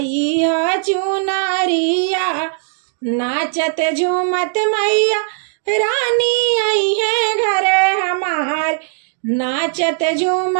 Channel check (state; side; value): silent; left; digital silence